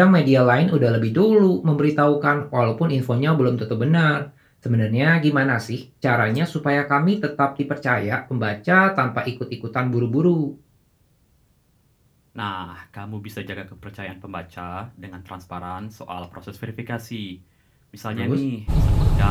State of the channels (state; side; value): identical; both; correlation 1.00